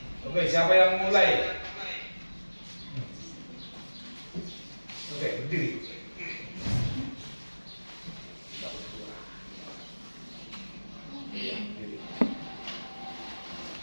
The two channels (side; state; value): both; inverted; correlation -1.00